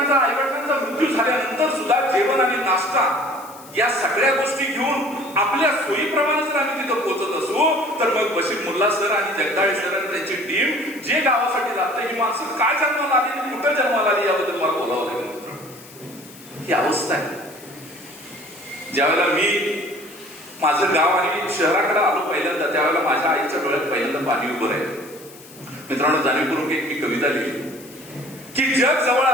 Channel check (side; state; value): left; noise; hiss, 20 dB below the sound